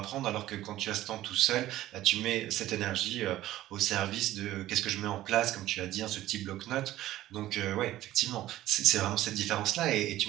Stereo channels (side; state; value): left; quieter; 14.7 dB